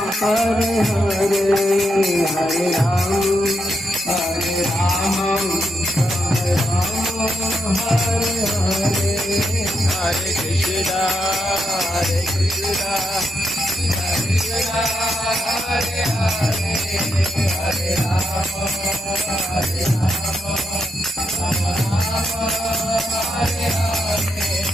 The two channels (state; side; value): normal; both; correlation 0.82